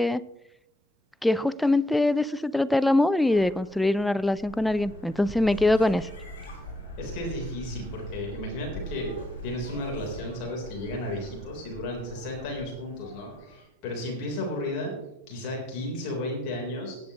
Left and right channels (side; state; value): both; normal; correlation 0.75